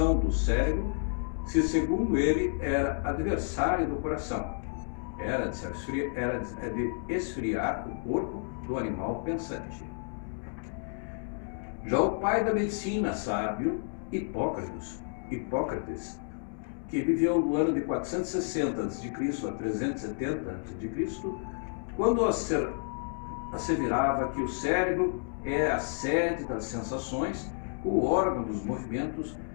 do cérebro, se segundo ele, era adversário do coração, era de esfriar o corpo do animal pensante. Já o pai da medicina sábio, Hipócrates, que viveu no ano de 460 a.C. a 370 a.C., quando asseverava que o cérebro é a sede das sensações, o órgão dos movimentos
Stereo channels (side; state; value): right; silent; 57 dB below the other